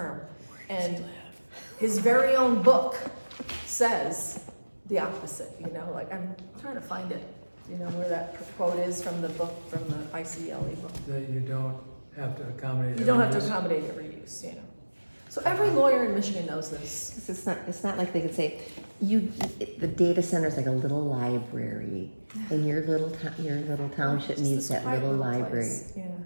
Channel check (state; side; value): inverted; both; correlation -1.00